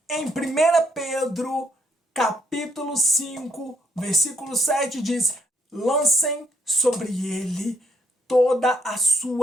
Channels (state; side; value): normal; both; correlation 0.72